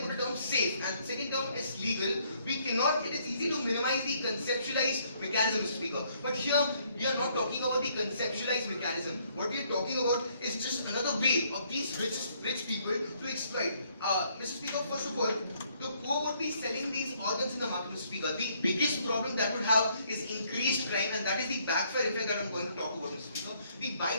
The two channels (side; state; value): both; inverted; correlation -0.67